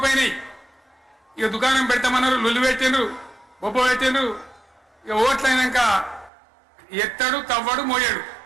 ఇక దుకాణం పెడతామన్నారు, లొల్లు పెట్టిండ్రు, బొబ్బ పెట్టిండ్రు. ఇక ఓట్లయినాక ఎత్తడు తవ్వడు మోయాడు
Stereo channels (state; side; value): drops out; left; at 6.3 s